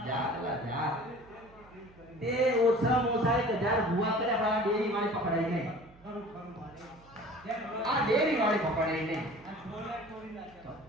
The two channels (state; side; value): noise; right; hum, 26 dB below the sound